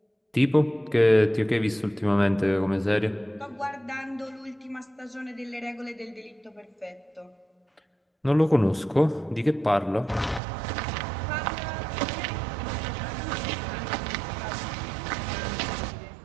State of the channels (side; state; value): left; drops out; at 10.4 s